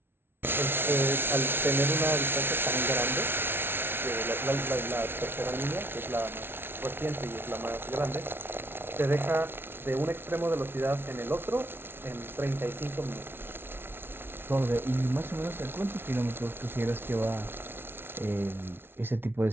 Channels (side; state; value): left; late; 0.11 ms